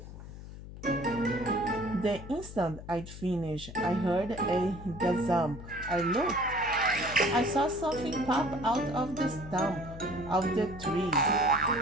The instant I'd finished, I heard a gazump. I looked. I saw something pop out of the stump of the tree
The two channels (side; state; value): left; noise; hum, 13 dB below the sound